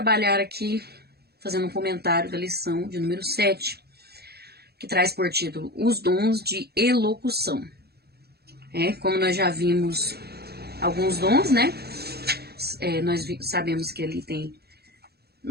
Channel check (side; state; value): left; late; 0.46 ms